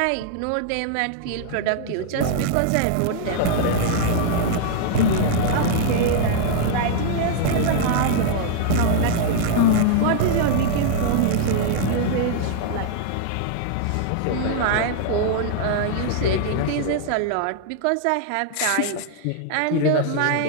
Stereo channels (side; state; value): both; different; correlation -0.01